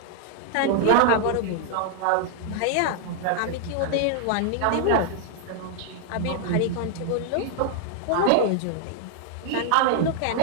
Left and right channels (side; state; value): both; different; correlation 0.00